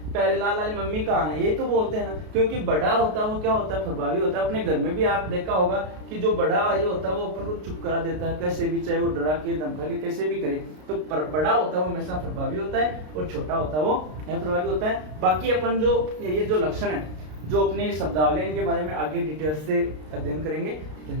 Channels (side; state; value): left; late; 33 ms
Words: प्यारेलाल वाली मम्मी कहाँ है? ये तो बोलते हैं ना, क्योंकि बड़ा होता है वो क्या होता है? प्रभावी होता है। अपने घर में भी आप देखा होगा कि जो बड़ा ये होता है वो अपन को चुप करा देता है कैसे भी, चाहे वो डरा के धमका के कैसे भी करे। तो बड़ा होता है वो हमेशा प्रभावी होता है और छोटा होता है वो अप्रभावी होता है। बाकी अपन जो ये जो लक्षण है, जो अपने शब्दावली, इनके बारे में आगे डिटेल से अध्ययन करेंगे।